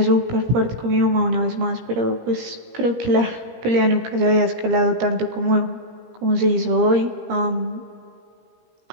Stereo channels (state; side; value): late; left; 17 ms